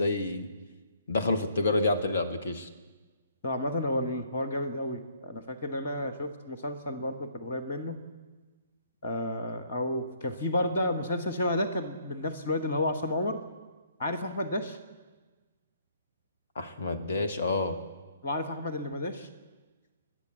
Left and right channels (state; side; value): inverted; both; correlation -0.63